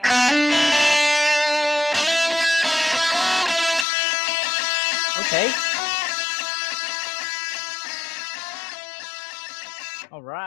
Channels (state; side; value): drops out; right; at 3.9 s